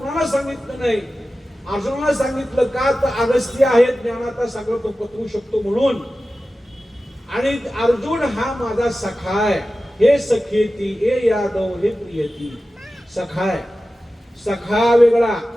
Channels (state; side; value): normal; both; correlation 0.94